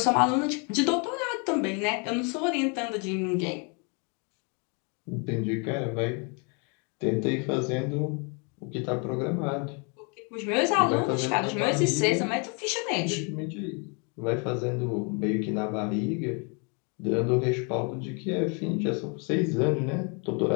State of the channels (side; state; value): right; quieter; 35.1 dB